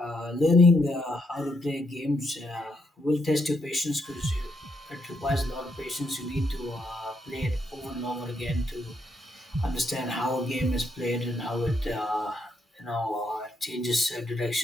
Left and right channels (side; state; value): both; normal; correlation 0.77